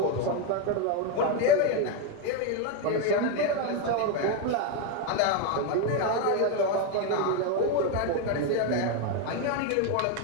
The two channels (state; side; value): different; both; correlation 0.02